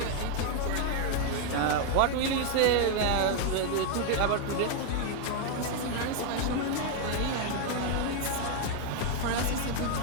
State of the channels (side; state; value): both; different; correlation 0.00